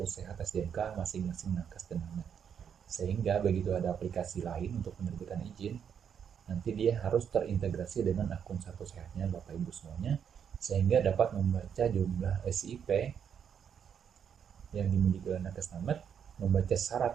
Sehat SDMK masing-masing nakes dan namet. Sehingga begitu ada aplikasi lain untuk penerbitan izin, nanti dia harus terintegrasi dengan akun Satu Sehatnya Bapak Ibu semuanya, sehingga dapat membaca jumlah SIP yang dimiliki oleh nakes namet, membaca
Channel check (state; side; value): quieter; left; 7.9 dB